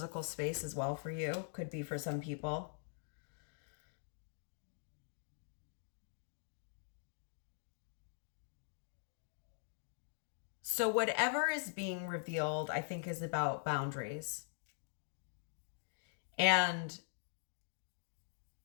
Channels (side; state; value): right; silent; digital silence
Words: space as well for you. Could be for some people. So whatever is being revealed, I think, is about boundaries. And